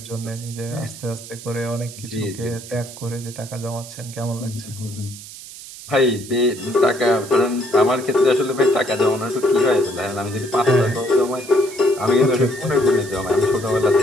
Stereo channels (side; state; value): right; noise; hiss, 15 dB below the sound